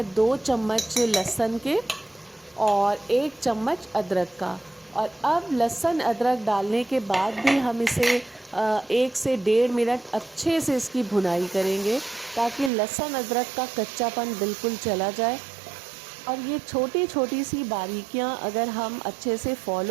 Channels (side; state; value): left; drops out; at 12.7 s